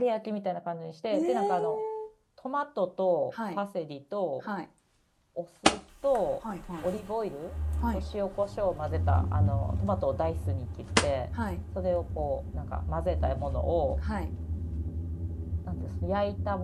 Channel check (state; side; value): identical; both; correlation 1.00